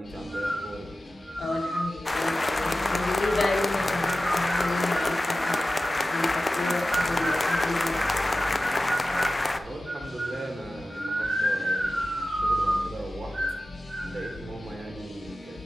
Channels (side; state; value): both; normal; correlation 0.94